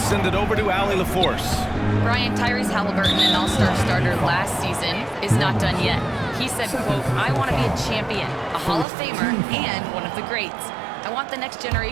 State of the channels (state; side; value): drops out; left; at 8.8 s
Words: send it over to Allie LaForce. Brian, Tyrese Halliburton, an all-star starter last season, is not done yet. He said, quote, "I want to be a champion, a Hall of Famer, and one of the greats. I want the next